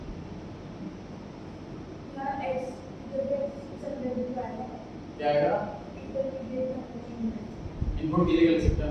क्या आएगा, इनपुट की जगह लिख सकते हैं,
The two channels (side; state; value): both; identical; correlation 1.00